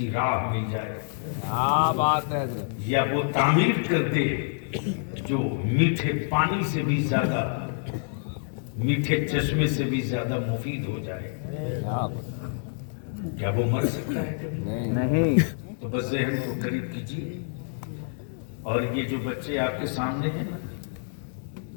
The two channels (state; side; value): silent; right; digital silence